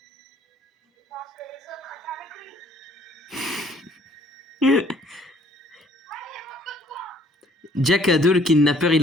Jack à deux, le kidnappeur, il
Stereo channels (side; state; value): both; normal; correlation 0.60